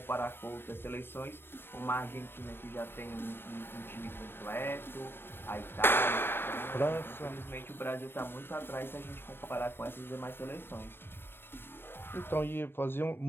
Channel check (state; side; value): late; right; 0.10 ms